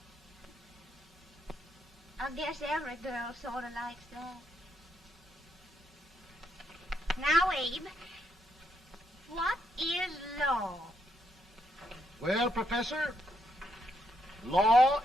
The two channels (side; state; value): both; normal; correlation 0.77